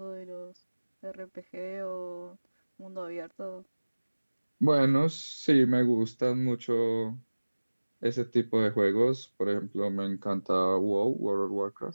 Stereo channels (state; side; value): inverted; both; correlation -1.00